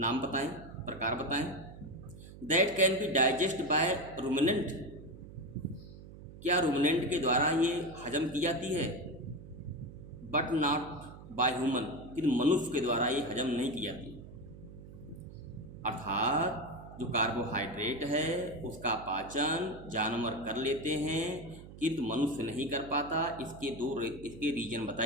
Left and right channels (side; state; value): right; noise; hum, 16 dB below the sound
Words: बताएं, प्रकार बताएं। That can be digest by ruminant. क्या रूमिनेंट के द्वारा ये हजम की जाती है? बट नॉट बाय ह्यूमन, लेकिन मनुष्य के द्वारा ये हजम नहीं की जाती। अर्थात जो कार्बोहाइड्रेट है उसका पाचन जानवर कर लेते हैं किंतु मनुष्य नहीं कर पाता। इसके रीजन